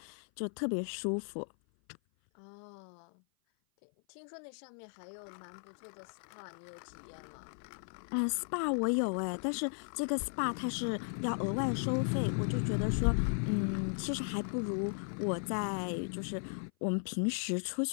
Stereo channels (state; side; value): silent; right; 54 dB below the other